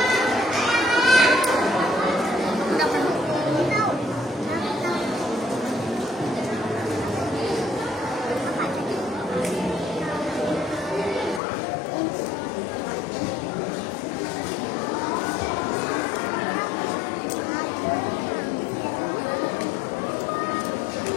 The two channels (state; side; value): drops out; right; at 11.4 s